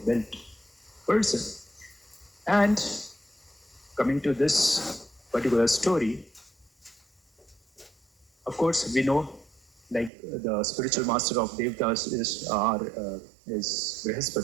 built person. And coming to this particular story, of course, we know like the spiritual master of Devtas is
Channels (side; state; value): left; drops out; at 10.1 s